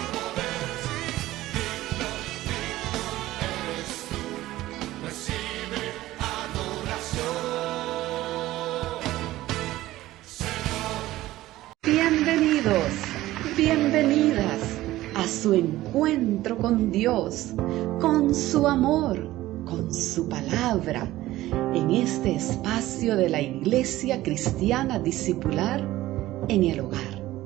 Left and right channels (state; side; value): quieter; left; 16.1 dB